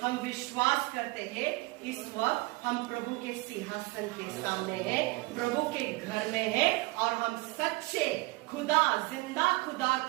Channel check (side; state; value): left; quieter; 23.3 dB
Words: हम विश्वास करते हैं इस वक्त हम प्रभु के सिंहासन के सामने हैं, प्रभु के घर में हैं और हम सच्चे खुदा, जिंदा खुदा